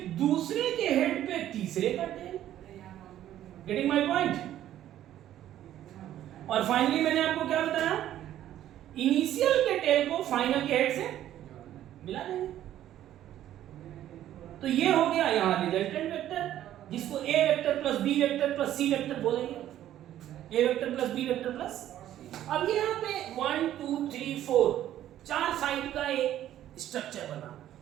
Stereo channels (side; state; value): left; quieter; 12.2 dB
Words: दूसरे के हेड पे तीसरे का टेल। Getting my point? और फाइनली मैंने आपको क्या बताया? इनिशियल के टेल को फाइनल के हेड से मिला देंगे। तो ये हो गया यहां रिजल्टेंट वेक्टर, जिसको A vector plus B vector plus C vector बोलेंगे। A vector plus B vector plus, अब यहाँ पे 1 2 3 4 चार साइड का एक स्ट्रक्चर बना,